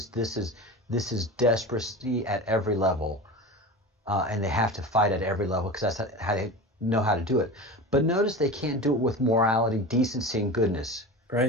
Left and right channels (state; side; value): normal; both; correlation 0.30